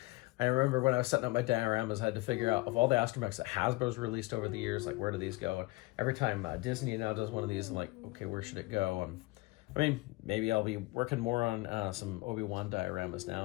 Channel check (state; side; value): quieter; right; 22.4 dB